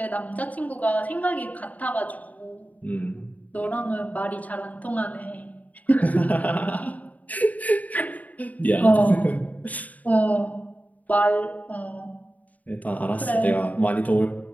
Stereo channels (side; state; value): right; late; 0.074 ms